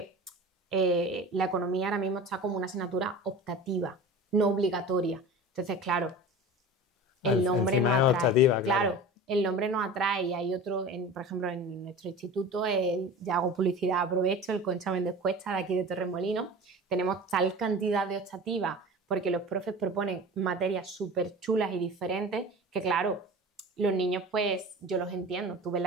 la economía ahora mismo está como una asignatura optativa, no obligatoria. Entonces, claro, el nombre no atrae. Optativa, claro, el nombre no atrae y hay otro, por ejemplo, en nuestro instituto, ya hago publicidad, aprovecho, el Concha Méndez Cuesta de aquí de Torremolinos, tenemos tal cantidad de optativas porque los profes proponen materias súper chulas y diferentes que, claro, los niños, pues, yo los entiendo. Tú ves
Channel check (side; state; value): both; normal; correlation 0.35